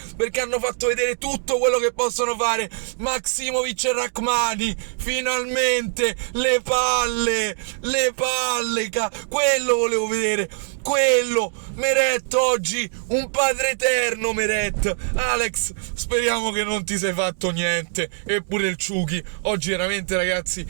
perché hanno fatto vedere tutto quello che possono fare. Maksimovic e Rachmani, finalmente le palle, quello volevo vedere, quello. Meret oggi un padre eterno. Meret, Alex, speriamo che non ti sei fatto niente. Eppure il Ciuchi oggi veramente, ragazzi,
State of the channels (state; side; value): silent; left; digital silence